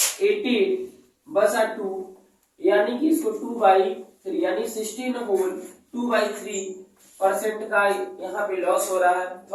18 बचा 2, यानी कि इसको 2/3 यानी 16 होल 2/3% का यहाँ पे लॉस हो रहा है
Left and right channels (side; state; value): both; identical; correlation 1.00